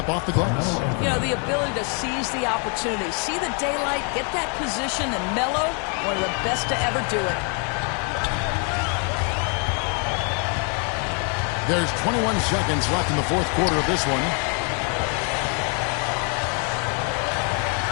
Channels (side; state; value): right; quieter; 37.9 dB